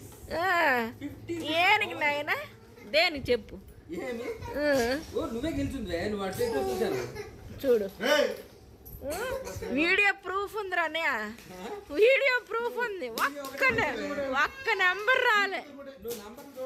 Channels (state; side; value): identical; both; correlation 1.00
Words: ఏనికి నాయన దేనికి చెప్పు? నువ్వే గెలిచింది. చూడు వీడియో ప్రూఫ్ ఉందిరా అన్నయ్య, వీడియో ప్రూఫ్ ఉంది. ఒక్క నెంబర్ రాలే.